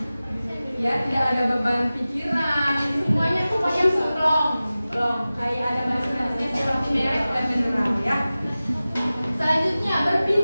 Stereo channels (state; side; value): inverted; both; correlation -0.96